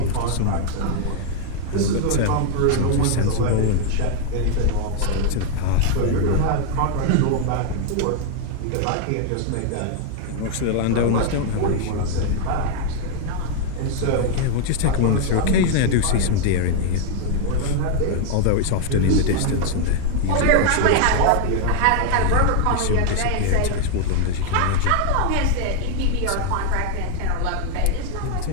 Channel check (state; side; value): different; both; correlation 0.00